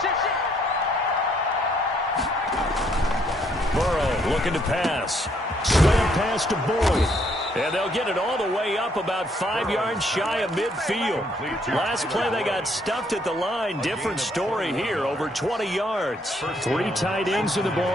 Burrow looking to pass. Slant pass to Boyd. And they'll get it all the way up about 5 yards shy of midfield. Last play they got stuffed at the line. Different story here, over 20 yards. 3 tight ends in the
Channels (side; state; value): both; normal; correlation 0.69